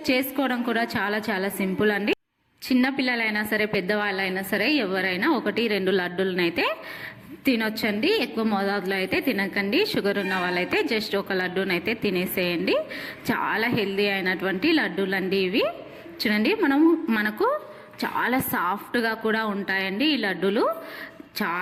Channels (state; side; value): identical; both; correlation 1.00